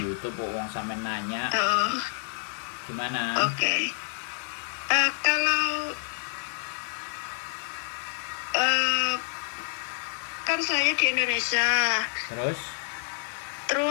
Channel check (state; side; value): silent; right; 59 dB below the other